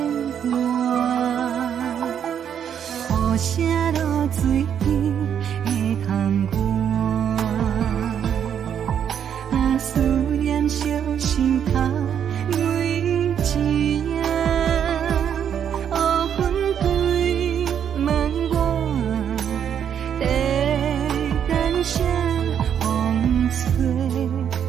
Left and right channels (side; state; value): left; quieter; 8.7 dB